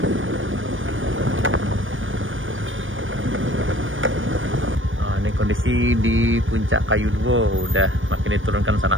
Nah, ini kondisi di Puncak Kayu Duo udah makin diturunkan sana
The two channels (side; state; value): left; late; 0.57 ms